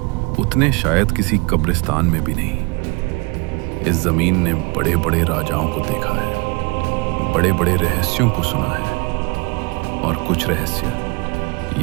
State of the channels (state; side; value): quieter; left; 28.2 dB